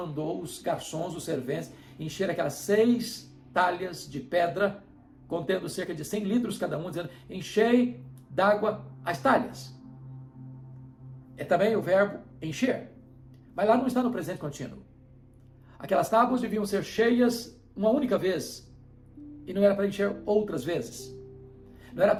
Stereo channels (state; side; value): identical; both; correlation 1.00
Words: os garçons, os serventes, encher aquelas 6 talhas de pedra, contendo cerca de 100 litros cada um, dizendo, enchei d'água as talhas. É também o verbo encher. Mas lá não está no presente contínuo. Aquelas tábuas deviam ser cheias uma única vez, e não era para encher outras vezes. Não era